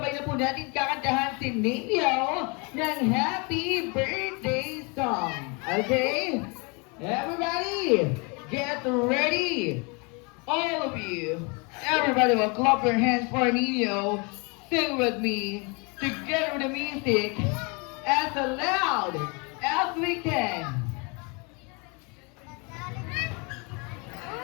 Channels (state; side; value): quieter; right; 31.4 dB